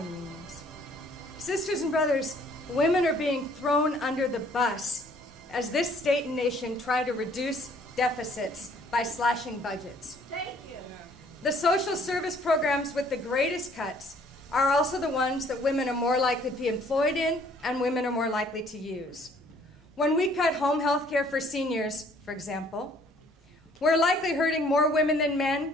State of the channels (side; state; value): both; normal; correlation 0.60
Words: unions. Sisters and brothers, women are being thrown under the bus as this state and nation try to reduce deficits by slashing budgets. Thank you. The social service programs with the greatest cuts are also the ones that women are more likely to be employed in and women are more likely to use. When we cut home health care for seniors, for example, we're likely hurting more women than men,